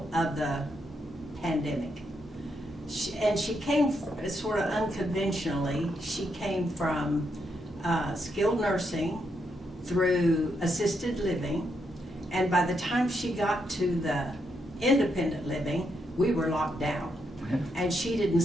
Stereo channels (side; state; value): both; normal; correlation 0.80